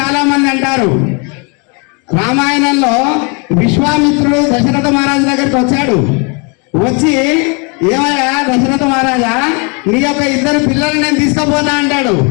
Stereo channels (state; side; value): quieter; right; 33.5 dB